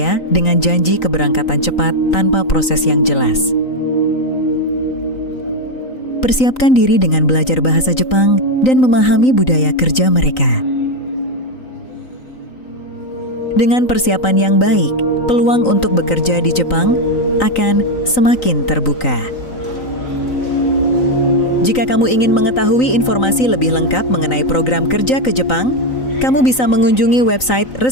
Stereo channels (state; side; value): late; right; 3.9 ms